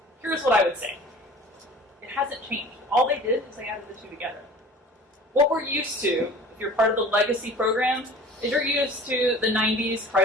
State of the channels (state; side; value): normal; both; correlation 0.43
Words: Here's what I would say. It hasn't changed. All they did is they added the two together. What we're used to, if you're part of the legacy program, is you're used to the 90s